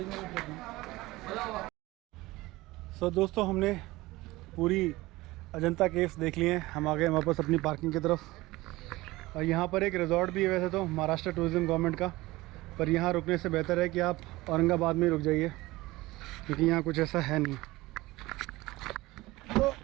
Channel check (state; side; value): quieter; left; 19.7 dB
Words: सो दोस्तों, हमने पूरी अजंता केव्स देख लिए हैं। हम आ गए वापस अपनी पार्किंग की तरफ। और यहाँ पर एक रिजॉर्ट भी है वैसे तो महाराष्ट्र टूरिज्म गवर्नमेंट का, पर यहाँ रुकने से बेहतर है कि आप औरंगाबाद में रुक जाइए, क्योंकि यहाँ कुछ ऐसा है नहीं। तो